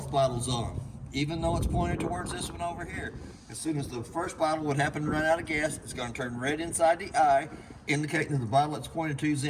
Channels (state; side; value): identical; both; correlation 1.00